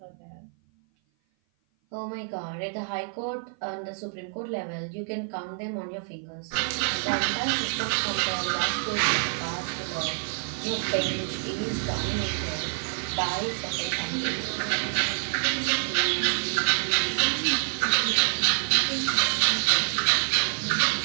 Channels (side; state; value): left; silent; 55 dB below the other